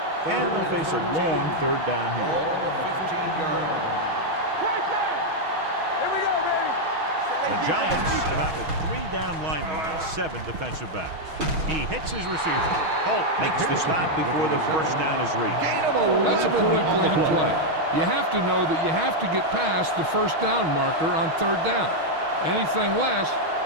And they'll face a long third down Ball here. on the 15-yard line. The Giants come out with 3 down linemen and 7 defensive backs. He hits his receiver. Holt makes the stop before the first down is reached. That's a poorly planned play. You have to know that you have to get past the first down marker on third down. Anything less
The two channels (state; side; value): late; left; 6.3 ms